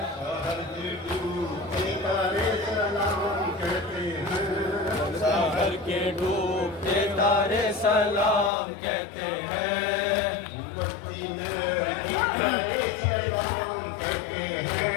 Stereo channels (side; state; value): right; drops out; at 8.5 s